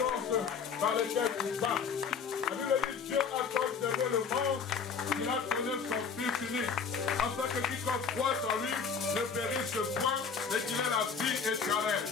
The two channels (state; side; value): quieter; right; 6.0 dB